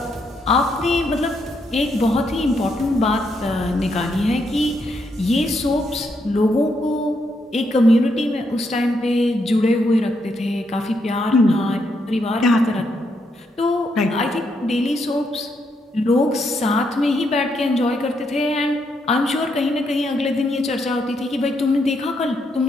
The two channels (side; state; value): both; normal; correlation 0.78